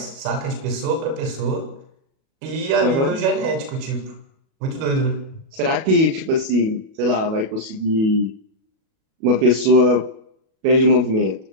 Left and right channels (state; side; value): late; left; 37 ms